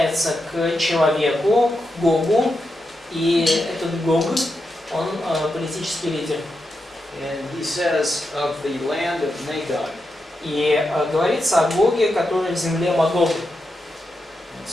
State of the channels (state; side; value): normal; both; correlation 0.87